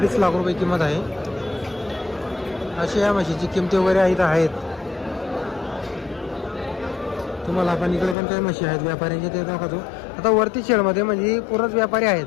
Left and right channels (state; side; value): drops out; right; at 8.2 s